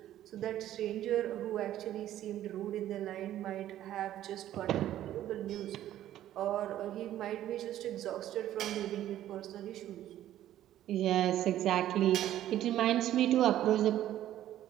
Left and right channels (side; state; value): left; quieter; 12.6 dB